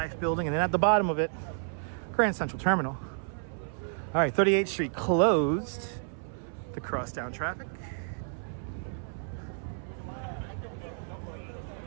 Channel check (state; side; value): silent; left; 57 dB below the other